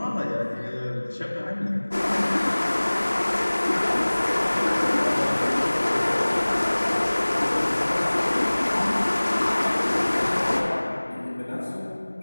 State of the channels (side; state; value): both; inverted; correlation -1.00